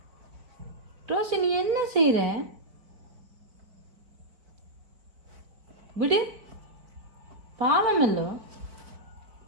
ரோசி, நீ என்ன செய்கிற? விடு, பாவமல்லோ.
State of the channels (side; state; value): left; late; 4.3 ms